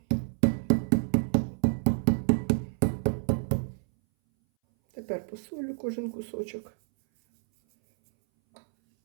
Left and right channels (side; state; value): left; silent; 59 dB below the other